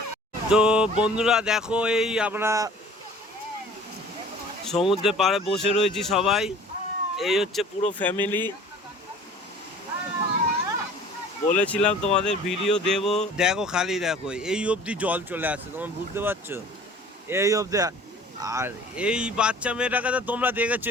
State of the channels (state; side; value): normal; both; correlation 0.47